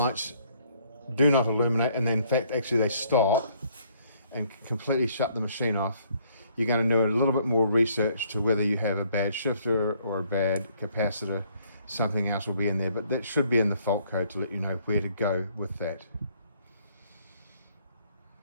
do not illuminate, and then in fact actually they stop and completely shut the machine off, you're going to do a little bit more research to whether you have a bad shifter or a bad capacitor. Something else will be in there, but that should be in the fault code to let you know where to go with that.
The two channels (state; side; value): inverted; both; correlation -0.65